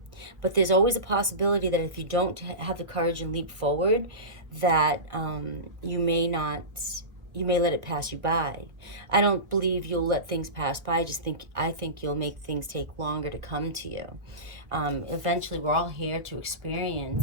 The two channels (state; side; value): late; left; 1.4 ms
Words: But there's always a possibility that if you don't have the courage and leap forward, that you may let it pass you by. I don't believe you'll let things pass by. I think you'll make things take longer to come to you. Eventually, we're all here to